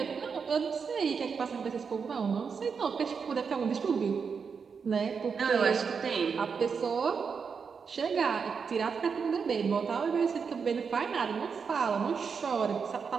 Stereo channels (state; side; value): quieter; left; 5.9 dB